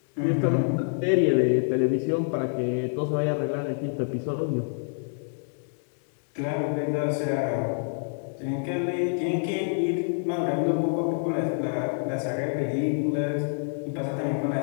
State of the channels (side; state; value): right; silent; digital silence